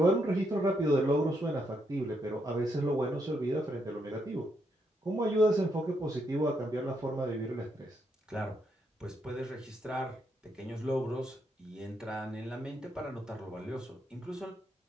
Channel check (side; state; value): both; normal; correlation 0.78